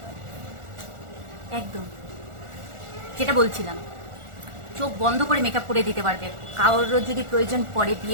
একদম যেটা বলছিলাম, চোখ বন্ধ করে মেকআপ করে দিতে পারবে। কারোর যদি প্রয়োজন পড়ে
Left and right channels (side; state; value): left; late; 1.4 ms